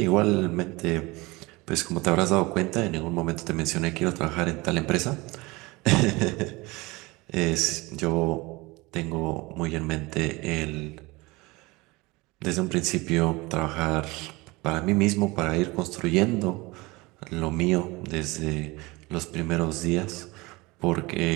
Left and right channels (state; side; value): quieter; left; 23.2 dB